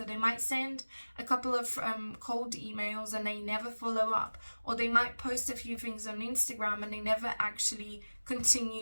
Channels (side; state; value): both; inverted; correlation -1.00